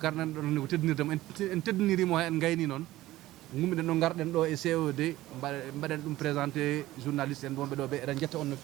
do ne ko teddinirdemo en teddinirimo en gayni non ngummi den do garden do e COD mbaden dum présenter journaliste en bombe do be eden jetta on no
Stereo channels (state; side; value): quieter; left; 16.3 dB